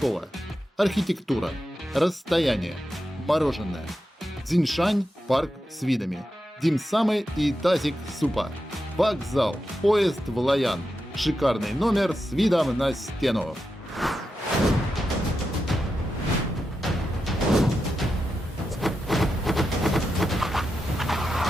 Архитектура, расстояние, мороженое. Цзиньшань, парк с видами. Димсамы и тазик супа. Вокзал, поезд в Лоян. Шикарный номер с видом на стену.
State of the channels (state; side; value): normal; both; correlation 0.88